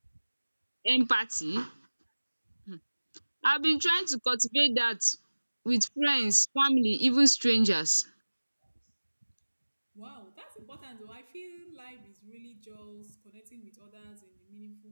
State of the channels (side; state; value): both; inverted; correlation -1.00